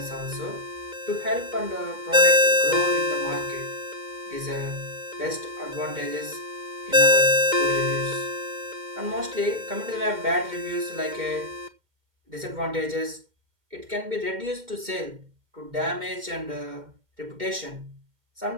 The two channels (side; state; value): left; late; 2.1 ms